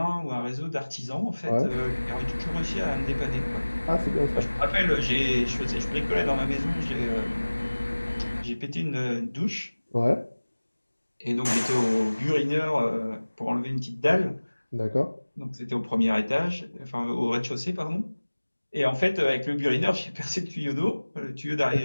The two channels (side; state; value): both; inverted; correlation -1.00